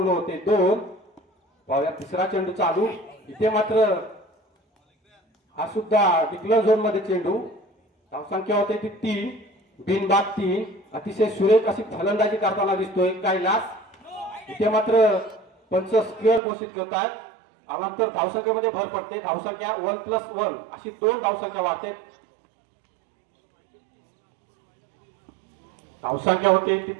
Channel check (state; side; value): drops out; left; at 16.4 s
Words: होते दोन पाहूया तिसरा चेंडू चालू इथे मात्र हा सुद्धा डिक्लेअर झोन मध्ये चेंडू धावसंख्या होते ती 3 बिनबाद 3 अतिशय सुरेख अशी फलंदाजी करताना दिसतोय कैलास इथे मात्र पंच स्क्वेअर घोषित करतात नंतर धावसंख्येमध्ये भर पडते धावसंख्या 1+1 अशी 2 धावसंख्या वाढते धावसंख्या होते ती